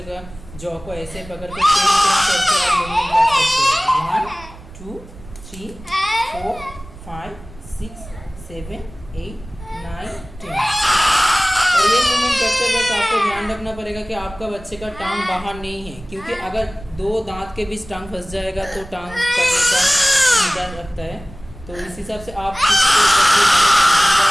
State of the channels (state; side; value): noise; right; rumble, 18 dB below the sound